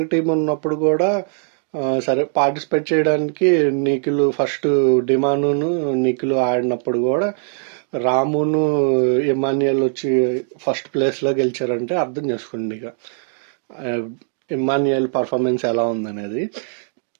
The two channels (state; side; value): silent; left; digital silence